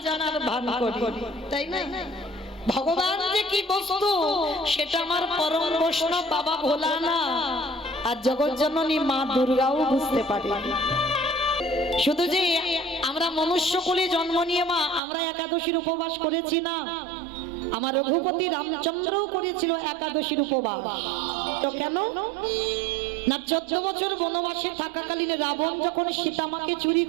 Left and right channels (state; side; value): drops out; left; at 15.0 s